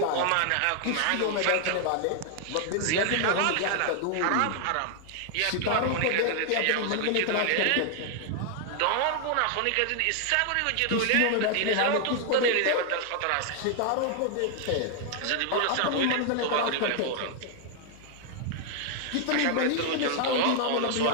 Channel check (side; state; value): both; different; correlation 0.00